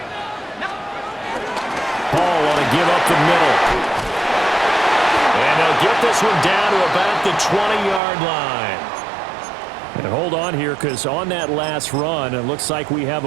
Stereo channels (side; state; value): left; drops out; at 8.0 s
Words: Paul want to give up the middle. And they'll get this one down to about the 20-yard line. And hold on here, because on that last run, it looks like we have